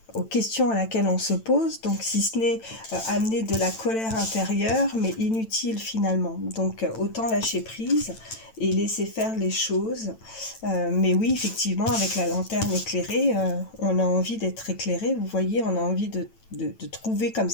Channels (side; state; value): right; late; 9.0 ms